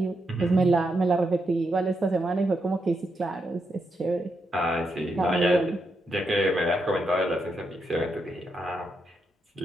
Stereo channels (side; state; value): both; normal; correlation 0.82